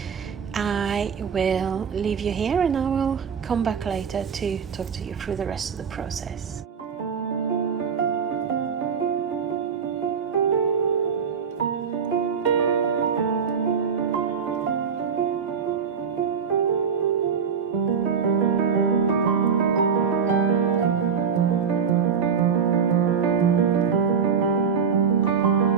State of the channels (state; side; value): quieter; left; 6.6 dB